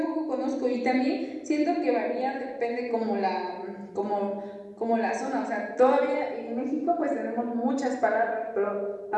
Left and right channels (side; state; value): both; identical; correlation 1.00